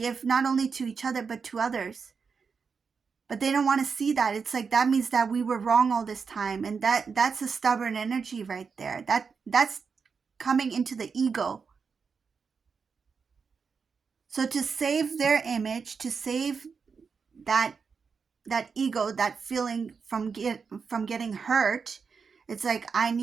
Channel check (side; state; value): left; quieter; 5.5 dB